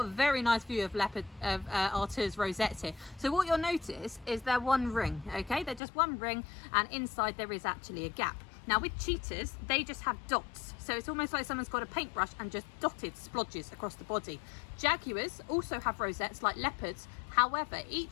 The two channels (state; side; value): drops out; right; at 5.8 s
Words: a very nice view of Artur's rosettes here. So what you'll notice is they're one ring, okay? They're just one ring, and inside there is actually a gap. Now with cheetahs, they just have dots. So it's almost like someone's got a paintbrush and just dotted splodges across the body. Jaguars also have rosettes like leopards. However,